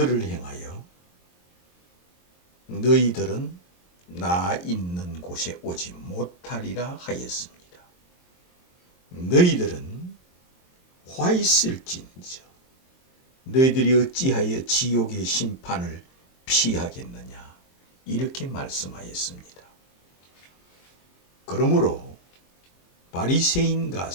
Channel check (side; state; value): right; late; 22 ms